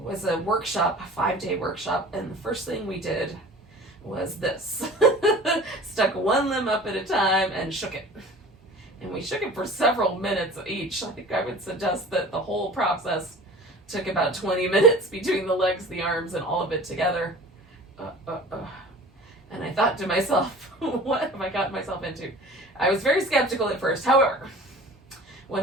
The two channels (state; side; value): normal; both; correlation 0.42